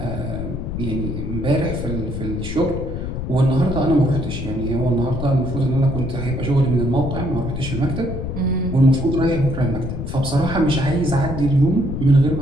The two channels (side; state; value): left; noise; rumble, 5 dB below the sound